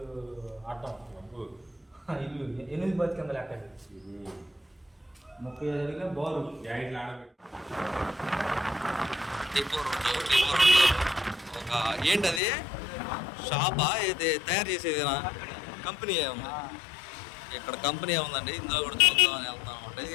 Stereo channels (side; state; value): right; drops out; at 12.4 s